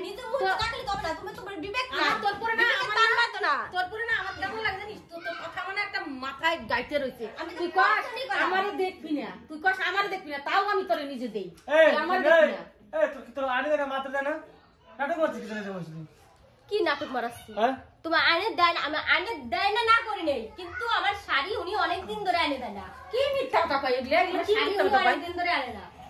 নিজের মুখ থাকলে তবে না, তুমি তোমার বিবেক না, তোর পরে না আমার টান মারতো না। তোর পরে না আমার কেমন লাগে জানিস? তোর কথা মানে একটা মাথায় গাইতে রয়েছে। আমি তো তুই কস পছন্দই করি না। আমারে দেখবি না, তুই কস আমারে দেখবি না, তাও আমি তোরে নিজে দেই। এই তুই আমারে দেখবি না। এই তোর আনি দেখা মাত্র দেনা নাটক করছিস কি জানিস বসলি? কি নাটক মারাচ্ছি? হ্যাঁ তোমার আইনে দেয় না, আমি আইনে দেয় না না করি নাই, কিন্তু আমার শাড়ি উনি অনেকদিন ধরে আনে দেয় না। কি মিথ্যা কথা কই? এগুলা এগুলা কি শাড়ি মিথ্যা উনি কথা কই? অনেকদিন ধরে আনে না,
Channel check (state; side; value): identical; both; correlation 1.00